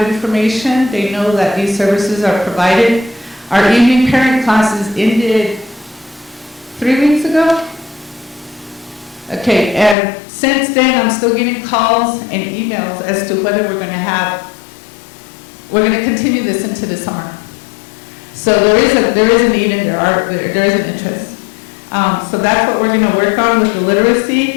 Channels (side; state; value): right; drops out; at 10.0 s